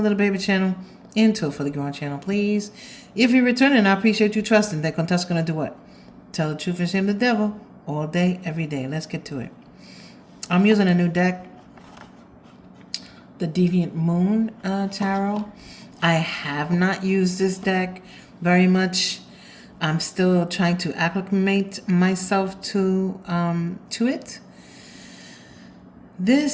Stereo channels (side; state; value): both; identical; correlation 1.00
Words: little baby channel into a fully grown channel, please. If you're returning, I appreciate you trusting that Contessa's going to do what? Tell the truth and shame the devil all day, every day. Let's get to it. I'm using a new deck, the Deviant Moon Tarot. I have not used this deck very much. I'm still trying to acclimate myself to it.